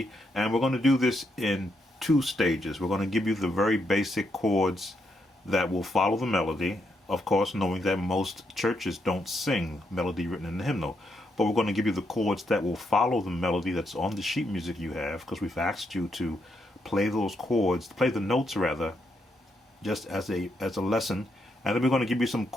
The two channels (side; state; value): both; normal; correlation 0.79